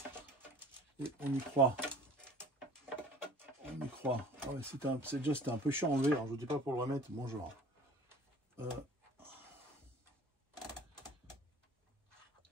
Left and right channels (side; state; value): both; normal; correlation 0.47